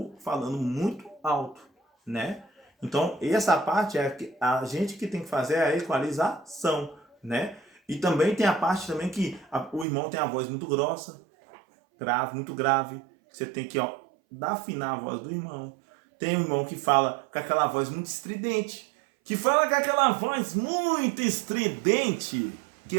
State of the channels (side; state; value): left; drops out; at 9.9 s